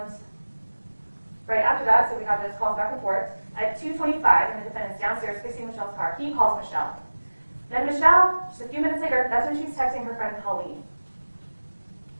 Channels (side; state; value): both; inverted; correlation -1.00